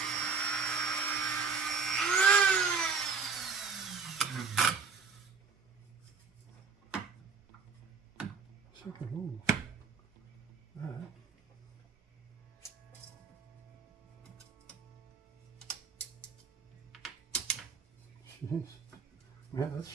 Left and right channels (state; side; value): quieter; left; 5.3 dB